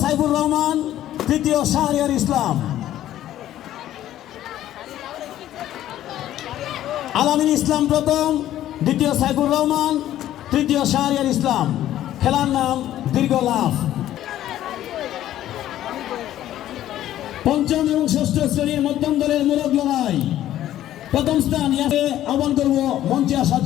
সাইফুর রহমান, তৃতীয় শাহরিয়ার ইসলাম। আল আমিন ইসলাম প্রথম, দ্বিতীয় সাইফুর রহমান, তৃতীয় শাহরিয়ার ইসলাম। খেলার নাম দীর্ঘ লাফ। পঞ্চম এবং ষষ্ঠ শ্রেণীর মধ্যম দলের মোরগ লড়াই প্রথম স্থান আহ্বান করব মঞ্চে আসার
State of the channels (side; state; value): right; quieter; 12.8 dB